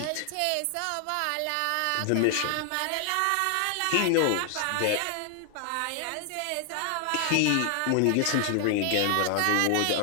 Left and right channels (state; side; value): different; both; correlation 0.00